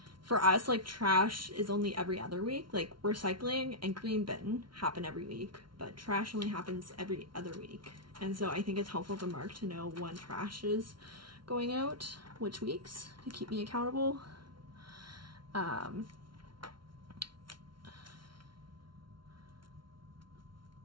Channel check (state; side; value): late; left; 0.73 ms